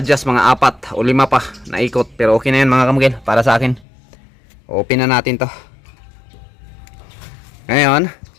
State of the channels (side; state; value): right; drops out; at 3.9 s